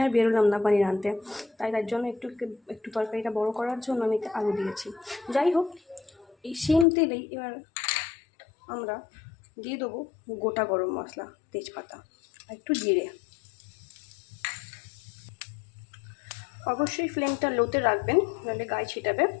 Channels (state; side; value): drops out; right; at 6.9 s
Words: আর বেরোলাম না পনির আনতে, তাই তার জন্য একটু তরকারিটা বড় করার জন্য আমি আলু দিয়েছি। যাই হোক, এই সেম তেলেই এবার আমরা দিয়ে দেবো গোটা গরম মশলা, তেজপাতা আর একটু জিরে। অবশ্যই ফ্লেমটা লোতে রাখবেন, নাহলে গায়ে ছিটাবে।